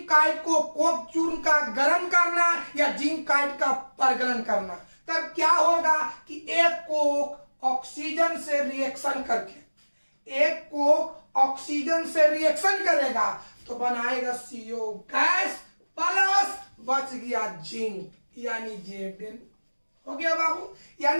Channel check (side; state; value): both; inverted; correlation -1.00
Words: काइट को कोक चूर्ण का गर्म करना या जिंक काइट का परगलन करना, तब क्या होगा कि एक कोक ऑक्सीजन से रिएक्शन करके, एक कोक ऑक्सीजन से रिएक्शन करेगा तो बनाएगा CO गैस प्लस बच गया जिंक, यानी Zn हो गया बाबू।